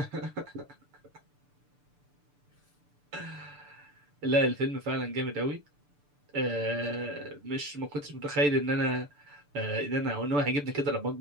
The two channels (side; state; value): left; late; 6.8 ms